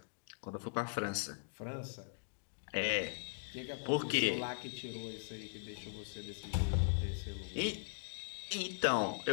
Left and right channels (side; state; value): right; silent; digital silence